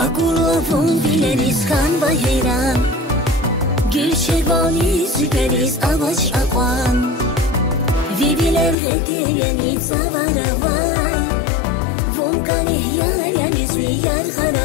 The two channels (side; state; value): right; drops out; at 8.8 s